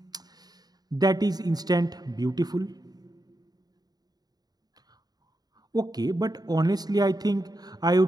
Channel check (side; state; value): left; late; 0.19 ms